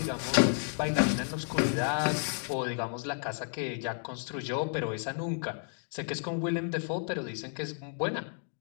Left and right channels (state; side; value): silent; right; 56 dB below the other